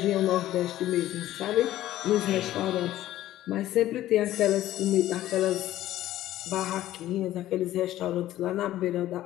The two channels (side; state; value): right; quieter; 14.0 dB